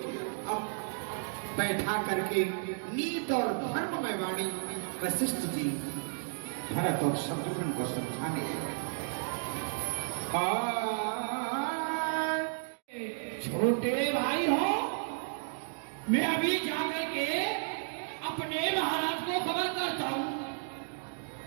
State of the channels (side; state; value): left; silent; digital silence